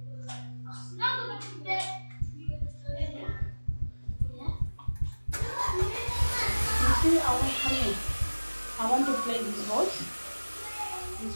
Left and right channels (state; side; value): inverted; both; correlation -1.00